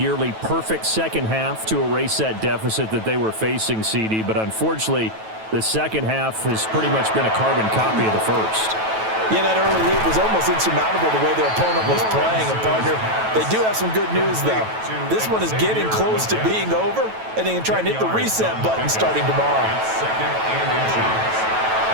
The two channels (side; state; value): left; late; 9.2 ms